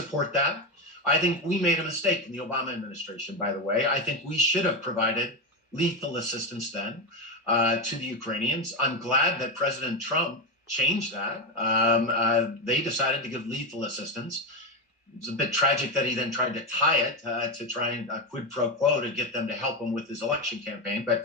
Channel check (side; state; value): both; normal; correlation 0.12